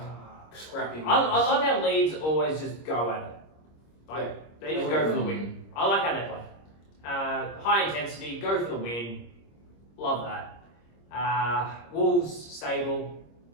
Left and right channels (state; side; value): late; right; 26 ms